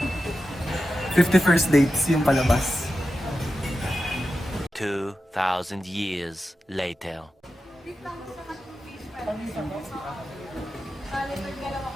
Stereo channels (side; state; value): both; normal; correlation 0.91